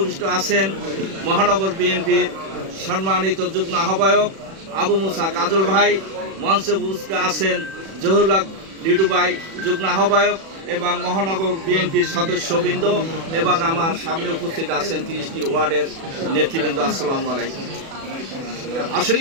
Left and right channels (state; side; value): late; left; 36 ms